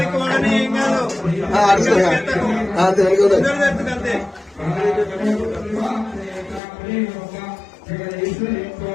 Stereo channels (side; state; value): right; drops out; at 6.6 s